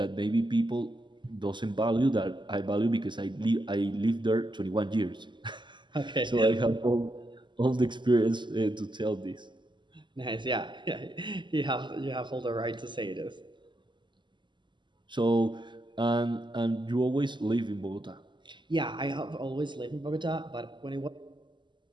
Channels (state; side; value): late; left; 0.22 ms